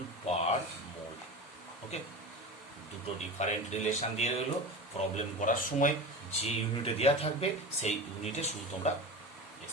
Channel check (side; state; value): both; normal; correlation 0.28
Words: per mole. ওকে, দুটো ডিফারেন্ট রিলেশন দিয়ে রইলো, প্রবলেম করার সময় যে ইউনিটে দেওয়া থাকবে সেই ইউনিটে শুধু তোমরা